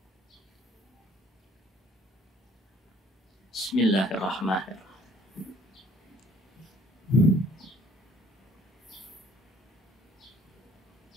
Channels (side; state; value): both; normal; correlation 0.57